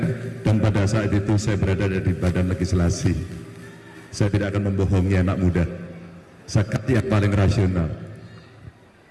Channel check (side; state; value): both; identical; correlation 1.00